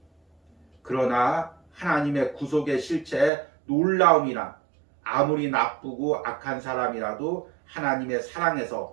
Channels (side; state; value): left; drops out; at 3.3 s